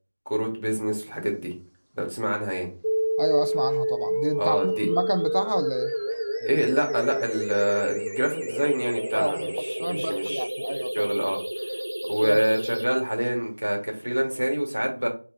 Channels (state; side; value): inverted; both; correlation -1.00